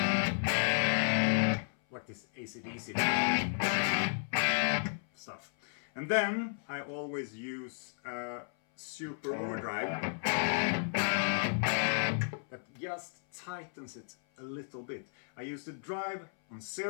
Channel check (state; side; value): silent; right; 55 dB below the other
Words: this AC/DC stuff. And then I always use super overdrive that just tightens it a little bit. I use the drive on